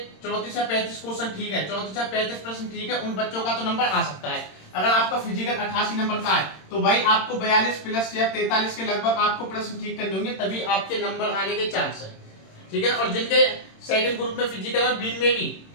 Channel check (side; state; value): right; late; 26 ms